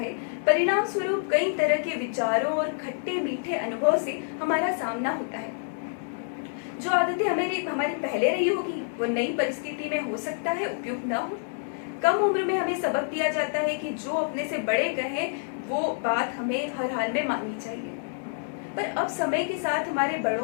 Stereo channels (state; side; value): silent; right; digital silence